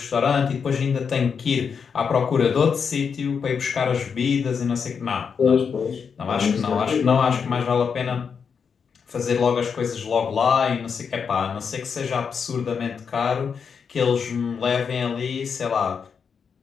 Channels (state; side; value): quieter; right; 6.3 dB